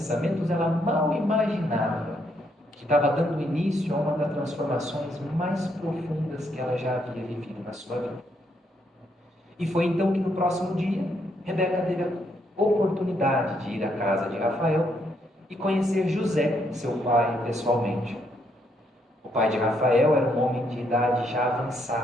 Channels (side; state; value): both; normal; correlation 0.74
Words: ela mal imaginava que estava dando início a uma das transformações mais profundas que ela já havia vivido na sua vida. E foi então que no próximo dia, Rebeca teve a oportunidade de ir à casa de Rafael e conhecer José, seu pai, pessoalmente. O pai de Rafael era um homem de idade já